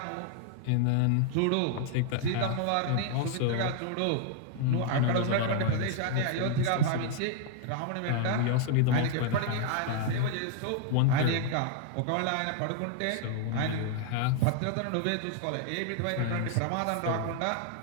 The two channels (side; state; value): both; different; correlation -0.01